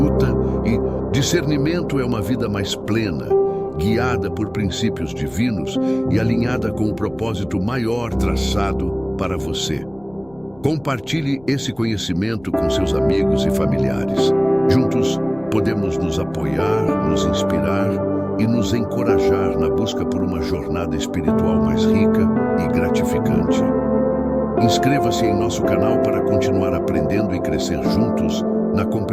e discernimento é uma vida mais plena, guiada por princípios divinos e alinhada com o propósito maior traçado para você. Compartilhe esse conhecimento com seus amigos e familiares. Juntos, podemos nos apoiar, nos inspirar e nos encorajar na busca por uma jornada espiritual mais rica e gratificante. Inscreva-se em nosso canal para continuar aprendendo e crescer juntos na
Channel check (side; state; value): left; noise; rumble, 27 dB below the sound